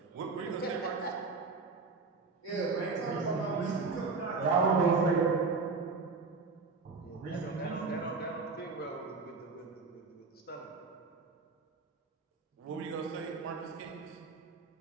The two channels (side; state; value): left; quieter; 4.3 dB